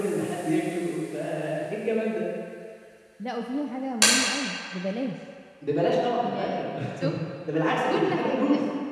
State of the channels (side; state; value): both; identical; correlation 1.00